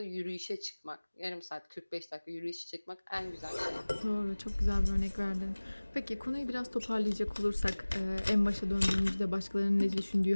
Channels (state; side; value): inverted; both; correlation -1.00